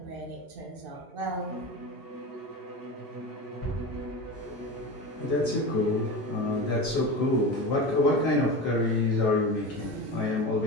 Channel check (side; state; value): both; normal; correlation 0.26